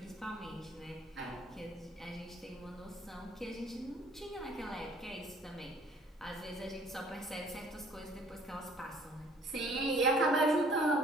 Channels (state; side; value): normal; both; correlation 0.56